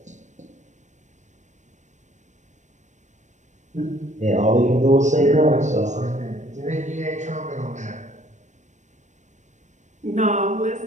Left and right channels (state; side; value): late; left; 0.35 ms